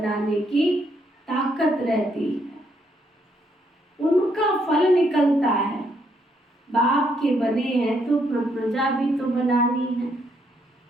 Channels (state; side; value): normal; both; correlation 0.74